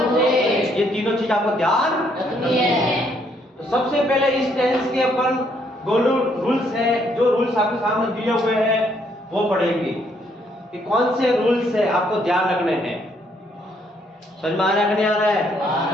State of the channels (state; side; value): normal; both; correlation 0.70